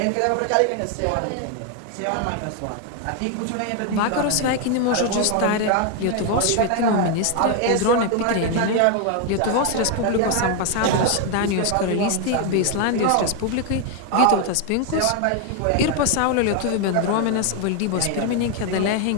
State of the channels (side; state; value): both; different; correlation 0.01